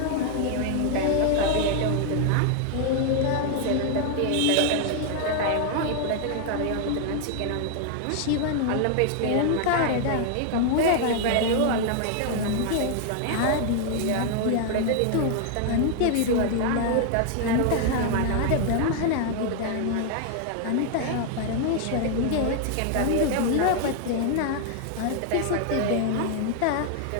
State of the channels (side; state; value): both; different; correlation 0.00